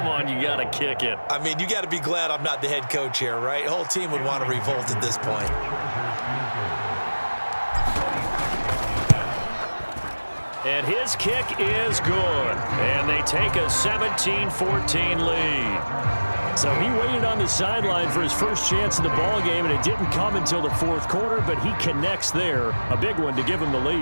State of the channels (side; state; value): both; inverted; correlation -1.00